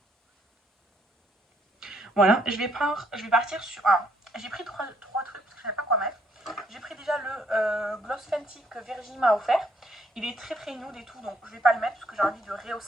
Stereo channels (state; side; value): normal; both; correlation 0.68